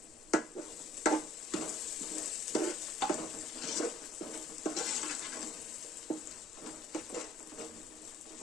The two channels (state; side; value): normal; both; correlation 0.58